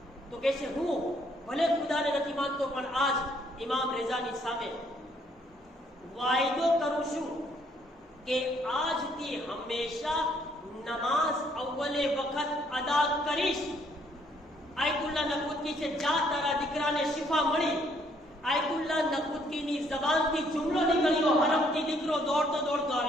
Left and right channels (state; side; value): normal; both; correlation 0.67